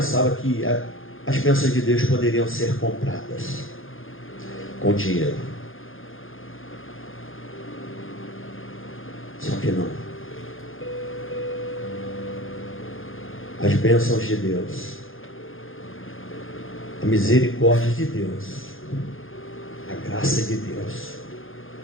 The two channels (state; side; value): late; right; 0.59 ms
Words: que as bênçãos de Deus poderiam ser compradas com dinheiro. Só que não. As bênçãos de Deus, a misericórdia de Deus, a graça de Deus,